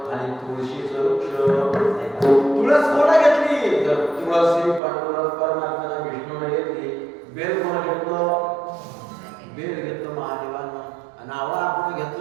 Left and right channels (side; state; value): left; drops out; at 4.8 s